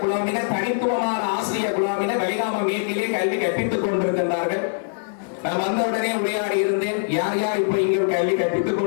குழாமினர், தனித்துவமான ஆசிரியர் குழாமினர் வெளிகாம மேற்கிலே கல்வி கற்பித்துக் கொண்டிருக்கின்றார்கள். நான் வந்தவுடனே உரையாடி இருந்தேன், யார் யார் இப்ப இங்கே கல்வி கற்பித்துக்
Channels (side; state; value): right; silent; digital silence